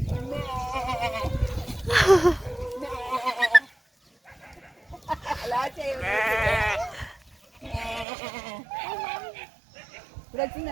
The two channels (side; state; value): left; drops out; at 8.1 s